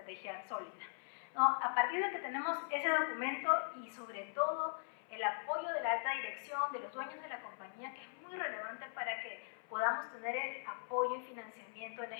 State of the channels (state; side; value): silent; right; 51 dB below the other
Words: sólida, ¿no? A partir de que tenemos ese documento y sobre todo el apoyo de la alta dirección, de los dueños de la compañía, que es muy relevante para que podamos tener el apoyo y financiamiento en la